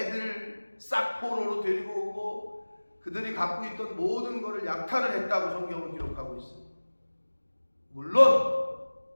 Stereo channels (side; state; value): both; inverted; correlation -1.00